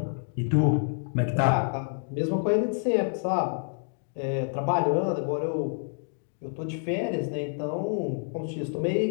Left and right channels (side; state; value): right; silent; digital silence